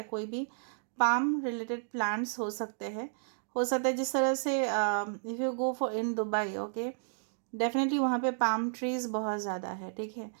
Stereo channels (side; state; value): left; silent; digital silence